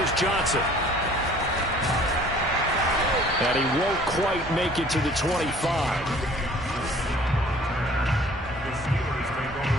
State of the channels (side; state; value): both; normal; correlation 0.53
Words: Johnson. And he won't quite make it to the 25.